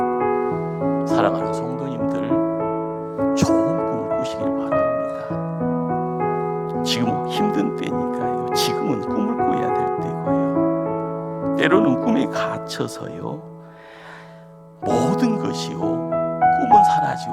사랑하는 성도님들 좋은 꿈을 꾸시길 바랍니다. 지금 힘든 때니까요. 지금은 꿈을 꿔야 될 때고요. 때로는 꿈에 갇혀서요. 모든 것이요. 꿈은 사라지고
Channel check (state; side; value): identical; both; correlation 1.00